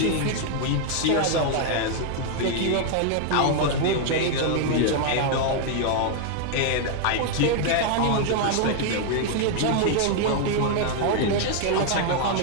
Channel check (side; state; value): both; different; correlation 0.00